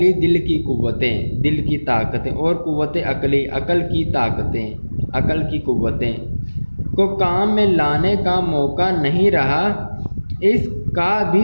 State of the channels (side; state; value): both; inverted; correlation -1.00